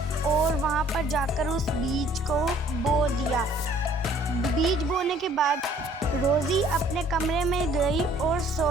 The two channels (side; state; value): both; normal; correlation 0.57